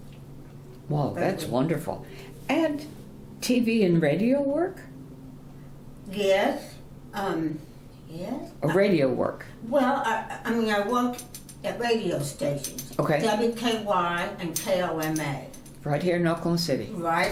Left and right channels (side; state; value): both; identical; correlation 1.00